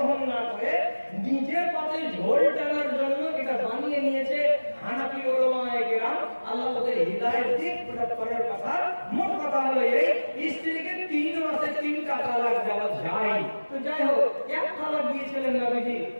না করে নিজের পাতে ঝোল টানার জন্য এটা বানিয়ে নিয়েছে হানাফি উলামায়ে কেরাম। আল্লাহ ওদের হিদায়াত দিক, ওটা পরের কথা। মোট কথা হলো এই, স্ত্রীকে 3 মাসে 3টা তালাক দেওয়া যায়। তো যাই হোক, এক তালাক দিয়েছিলেন নবীজি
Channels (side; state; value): both; inverted; correlation -1.00